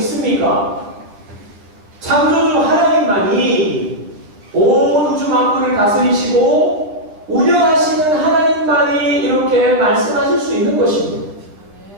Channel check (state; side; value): late; left; 9.8 ms